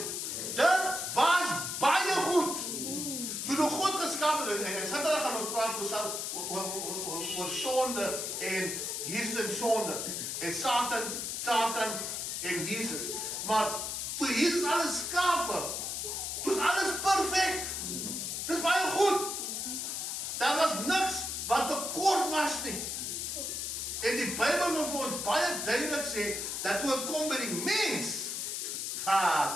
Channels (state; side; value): noise; left; hiss, 3 dB below the sound